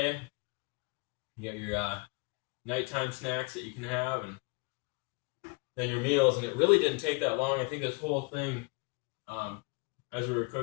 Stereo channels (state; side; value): quieter; right; 29.1 dB